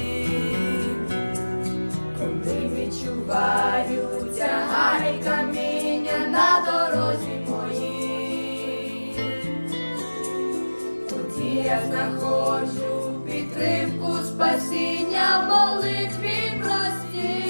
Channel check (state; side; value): inverted; both; correlation -1.00